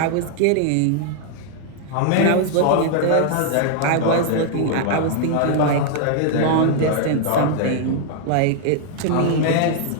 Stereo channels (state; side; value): different; both; correlation 0.00